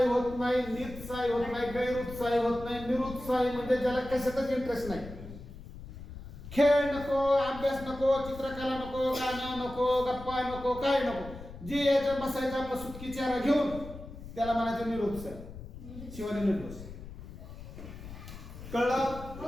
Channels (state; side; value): noise; left; rumble, 13 dB below the sound